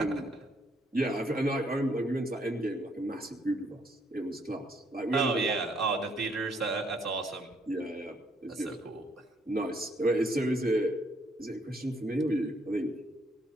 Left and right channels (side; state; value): both; normal; correlation 0.69